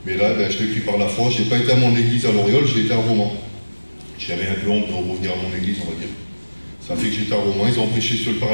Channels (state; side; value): inverted; both; correlation -1.00